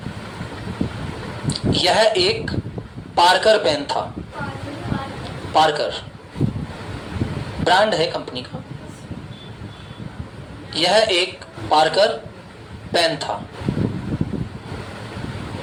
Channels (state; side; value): identical; both; correlation 1.00